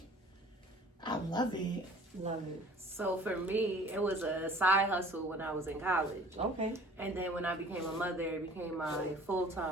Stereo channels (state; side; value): normal; both; correlation 0.49